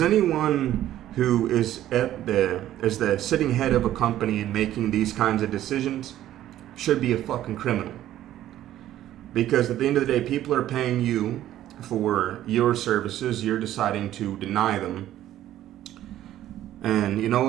anyone who is the sitting head of a company and making these kinds of decisions should be a fucking criminal. Because at the end of the day, people are paying you for your services. You're deciding to deny them. And you know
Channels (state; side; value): quieter; left; 12.9 dB